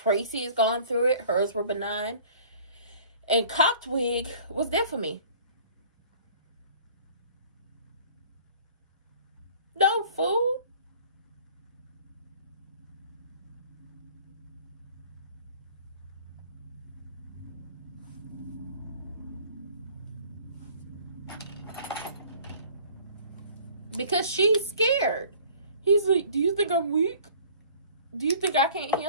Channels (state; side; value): inverted; both; correlation -0.50